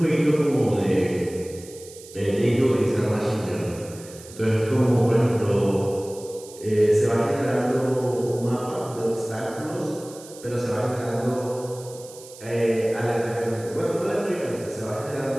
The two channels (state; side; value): noise; right; hiss, 18 dB below the sound